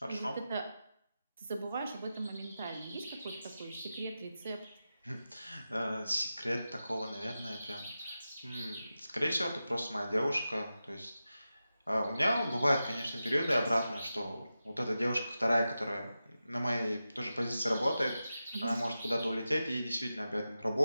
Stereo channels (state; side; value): inverted; both; correlation -0.92